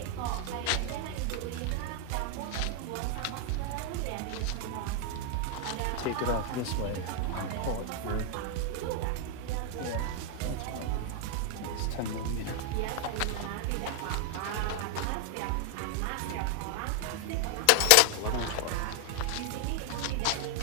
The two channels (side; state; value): both; different; correlation 0.00